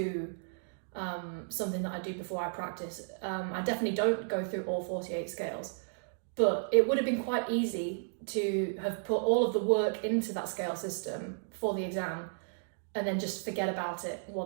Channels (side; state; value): left; silent; digital silence